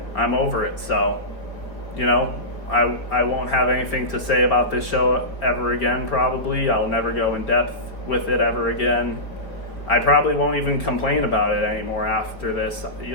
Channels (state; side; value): late; right; 4.2 ms